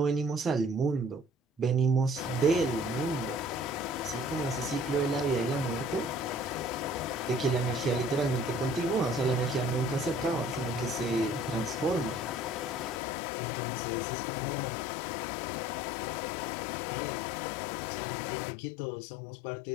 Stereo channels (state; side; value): drops out; right; at 13.0 s